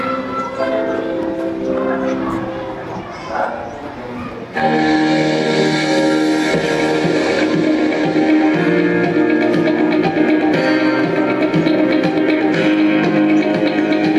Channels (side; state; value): both; identical; correlation 1.00